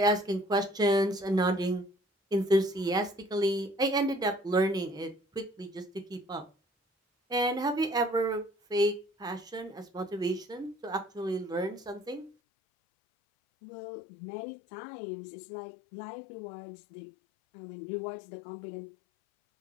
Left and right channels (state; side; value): drops out; right; at 12.4 s